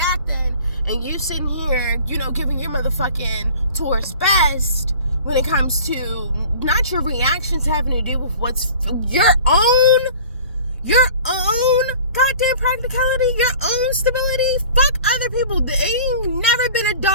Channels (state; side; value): inverted; both; correlation -0.45